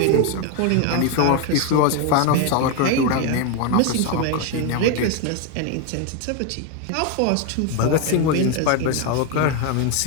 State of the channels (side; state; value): both; different; correlation 0.01